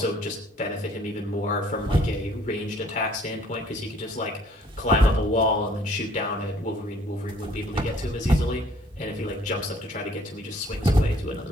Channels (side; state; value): both; normal; correlation 0.59